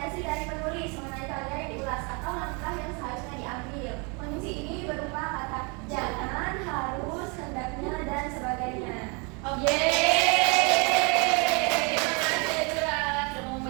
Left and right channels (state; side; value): quieter; left; 32.1 dB